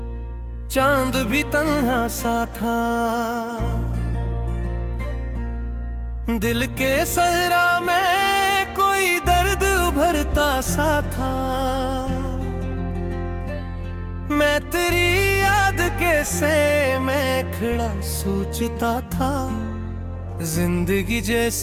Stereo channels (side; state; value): both; identical; correlation 1.00